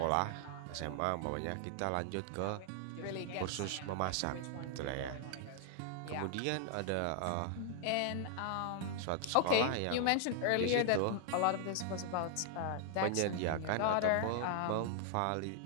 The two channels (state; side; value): different; both; correlation 0.00